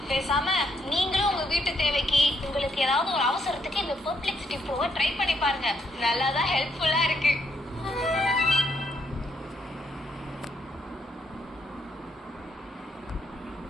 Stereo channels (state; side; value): normal; both; correlation 0.75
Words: பேசாம நீங்களும் உங்க வீட்டு தேவைக்கு உங்களுக்கு ஏதாவது ஒரு அவசரத்துக்கு இந்த பர்ஃபெக்ட் சிட்டி ப்ரோவை ட்ரை பண்ணி பாருங்க. நல்லா தான் ஹெல்ப்ஃபுல்லா இருக்கு.